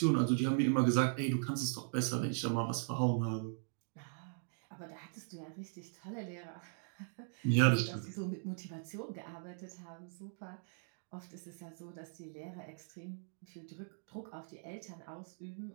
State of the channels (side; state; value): left; silent; digital silence